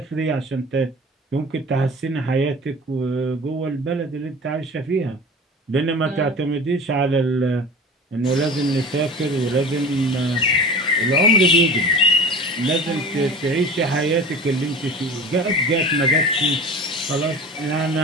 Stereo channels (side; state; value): both; normal; correlation 0.37